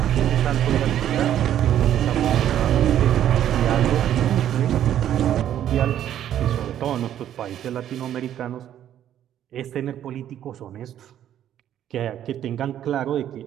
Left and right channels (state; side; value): quieter; left; 10.9 dB